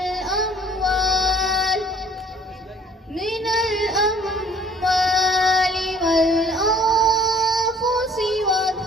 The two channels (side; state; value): both; normal; correlation 0.55